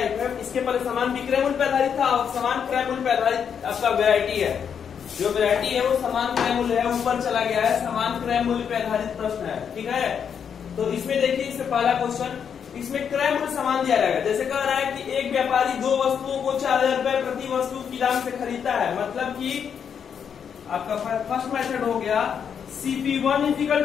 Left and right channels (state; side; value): quieter; right; 7.5 dB